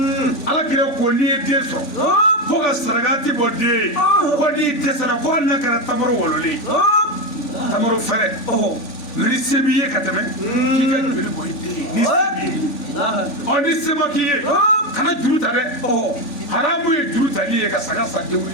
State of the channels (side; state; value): right; late; 3.4 ms